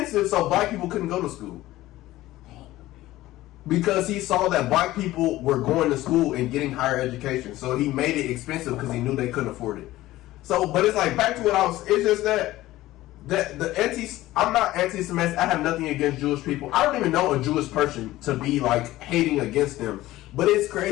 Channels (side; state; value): right; quieter; 16.4 dB